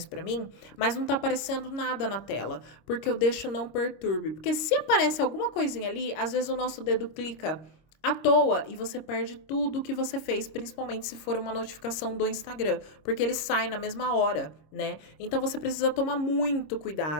para mim, mas não tá aparecendo nada na tela, porque eu deixo não perturbe. Porque se aparece alguma coisinha ali, às vezes o nosso dedo clica à toa e você perde tudo o que você fez, principalmente se for uma notificação do Instagram, porque ele sai na mesma hora, né? Então você precisa tomar muito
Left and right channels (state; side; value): late; right; 26 ms